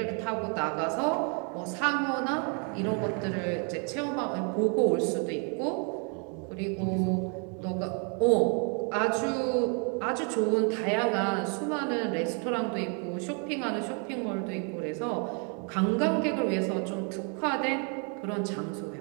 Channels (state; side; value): quieter; left; 38.3 dB